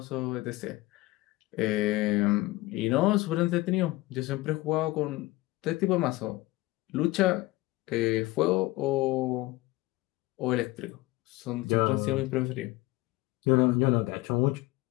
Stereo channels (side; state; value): right; quieter; 19.6 dB